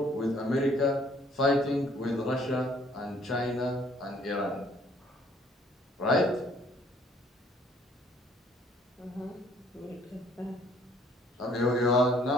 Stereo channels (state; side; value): normal; both; correlation 0.61